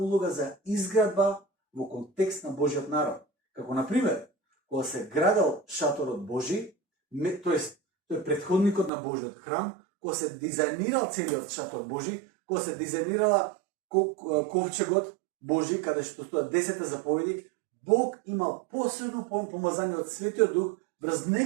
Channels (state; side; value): drops out; left; at 8.9 s